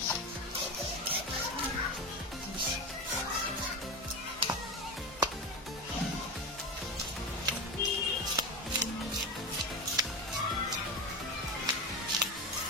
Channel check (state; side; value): normal; both; correlation 0.22